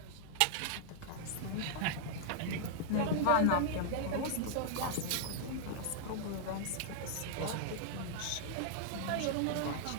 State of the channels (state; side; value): different; both; correlation -0.01